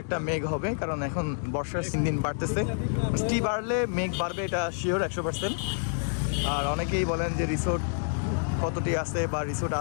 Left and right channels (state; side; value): silent; right; digital silence